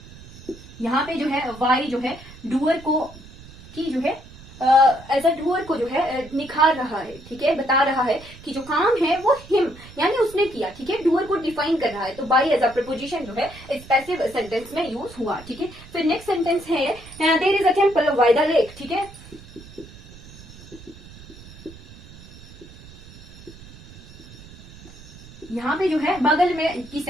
यहाँ पे जो है वाई जो है डूअर को की जो है एज अ डूअर को जो है निखार रहा है, ठीक है। बता रहा है कि जो काम है वो हिम यानी उसने किया, ठीक है। डूअर को डिफाइन कर रहा है, तो बाई एज अ प्रपोजिशन जो है इस पैसिव सेंटेंस में यूज हुआ, ठीक है। फिर नेक्स्ट सेंटेंस है there is a temple by the lake, ठीक है। यहाँ पे जो है बगल में की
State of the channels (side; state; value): right; noise; rumble, 19 dB below the sound